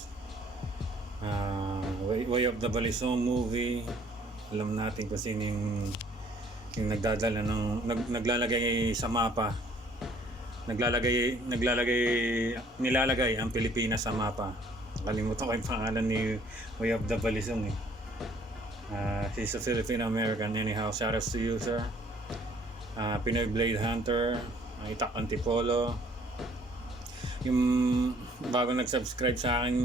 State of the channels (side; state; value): both; normal; correlation 0.60